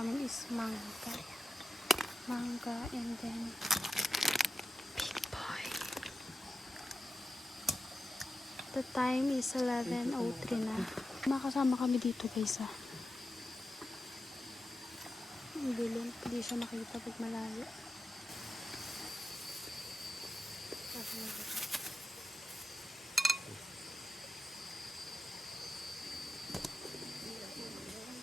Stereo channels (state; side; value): normal; both; correlation 0.90